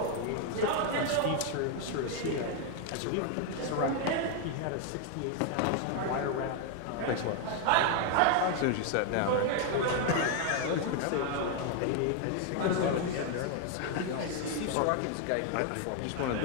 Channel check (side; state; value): both; different; correlation 0.01